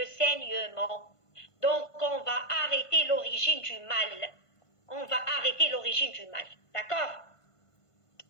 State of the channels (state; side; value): late; right; 1.5 ms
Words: saignement. Donc, on va arrêter l'origine du mal. On va arrêter l'origine du mal. D'accord?